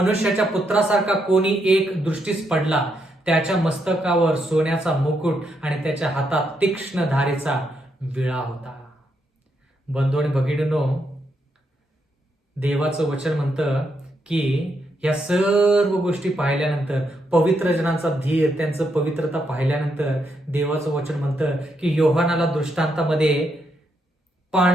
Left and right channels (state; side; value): normal; both; correlation 0.79